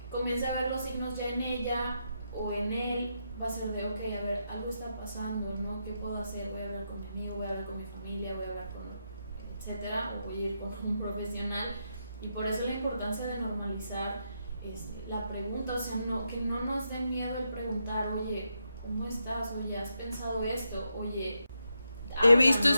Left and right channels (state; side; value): inverted; both; correlation -0.83